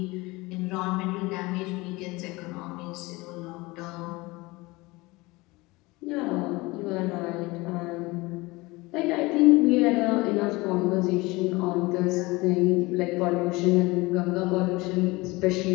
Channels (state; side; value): quieter; right; 22.6 dB